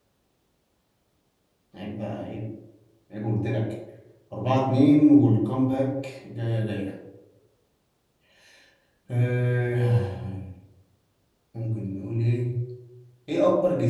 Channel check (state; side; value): identical; both; correlation 1.00